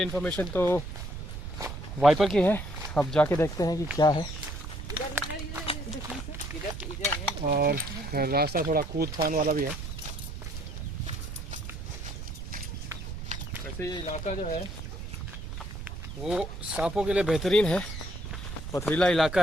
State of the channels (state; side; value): noise; right; rumble, 8 dB below the sound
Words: इन्फॉर्मेशन तो वाइपर की है, अब जाके देखते हैं कि क्या है। और रास्ता थोड़ा कूद फान वाला भी है। वैसे ये इलाका जो है वो सांपों के लिए बेहतरीन है, पथरीला इलाका